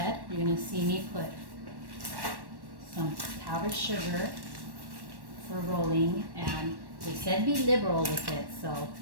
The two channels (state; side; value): late; left; 1.1 ms